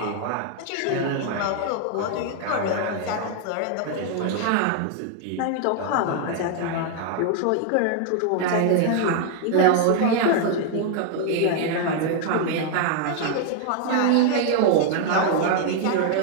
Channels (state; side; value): different; both; correlation 0.00